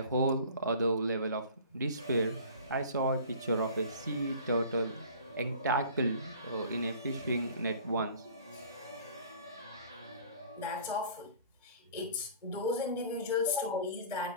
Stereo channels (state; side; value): inverted; both; correlation -0.46